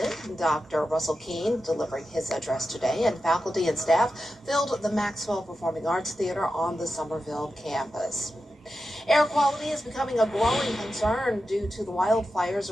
Dr. Russell Keene delivering his address to today, and faculty and staff filled the Maxwell Performing Arts Theater on the Somerville campus. Air quality is becoming a growing concern due to the wildfires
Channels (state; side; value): normal; both; correlation 0.91